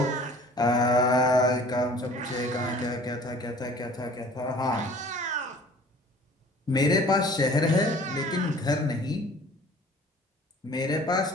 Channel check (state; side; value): normal; both; correlation 0.49